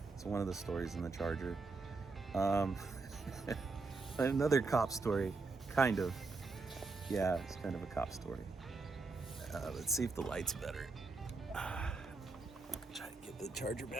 It's one of the stories in the Charger. Another cop story, kind of. Yeah, it's kind of a cop story. Let's see if the light's better. Try to get the Charger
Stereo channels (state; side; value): quieter; left; 3.8 dB